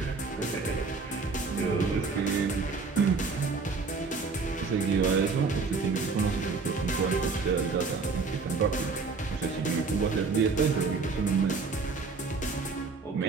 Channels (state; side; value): quieter; left; 4.4 dB